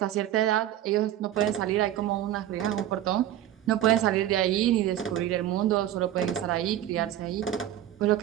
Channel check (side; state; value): left; quieter; 12.3 dB